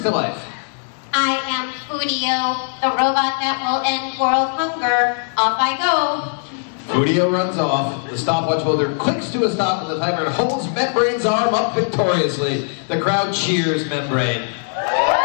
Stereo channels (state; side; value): silent; right; digital silence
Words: to life. I am Foodio, the robot that will end world hunger. Off I go. Foodio runs off. The stopwatch holder clicks to a stop and the timer holds Membrane's arm up victoriously. The crowd cheers Membrane.